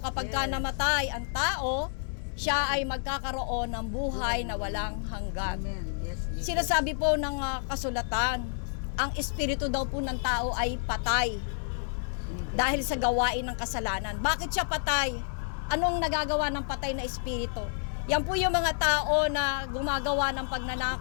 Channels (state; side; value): silent; right; digital silence